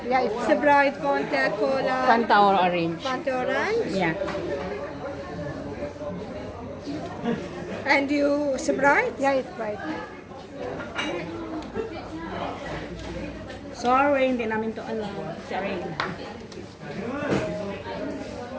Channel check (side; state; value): both; identical; correlation 1.00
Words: Yeah, it's Sprite, Fanta, cola, Fanta or orange? Fanta orange. Yeah. And you Sprite? yeah, it's Sprite. Sorry, hindi namin to alam. Sorry.